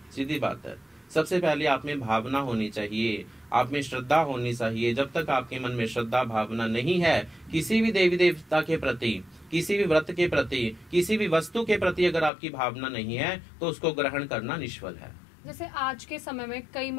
सीधी बात है। सबसे पहले आप में भावना होनी चाहिए, आप में श्रद्धा होनी चाहिए। जब तक आपके मन में श्रद्धा भावना नहीं है किसी भी देवी देवता के प्रति, किसी भी व्रत के प्रति, किसी भी वस्तु के प्रति अगर आपकी भावना नहीं है तो उसको ग्रहण करना निष्फल है। जैसे आज के समय में कई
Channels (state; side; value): drops out; right; at 12.3 s